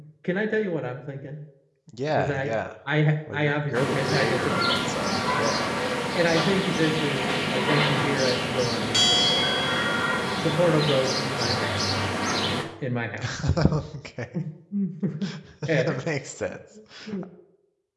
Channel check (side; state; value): both; identical; correlation 1.00